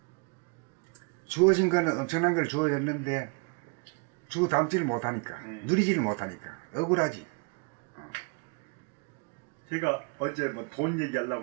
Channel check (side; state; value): left; quieter; 34.0 dB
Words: 주어진 거는 엄청난 걸 주어졌는데 주워 담지를 못하니까 누리지를 못하니까 억울하지. 제가 어제 뭐 돈